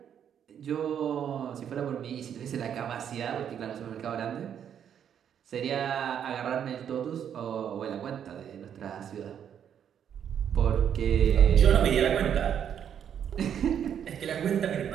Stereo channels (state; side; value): quieter; left; 8.8 dB